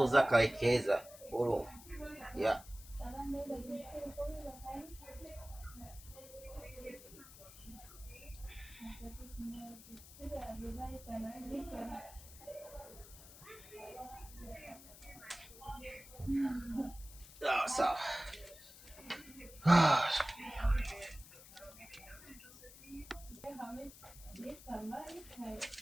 kawekeza oro yeah. Sawa.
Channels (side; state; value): left; noise; hiss, 18 dB below the sound